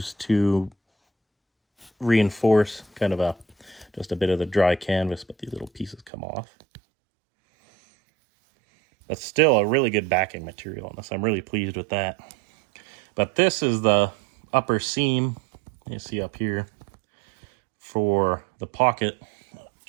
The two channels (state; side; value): drops out; left; at 6.1 s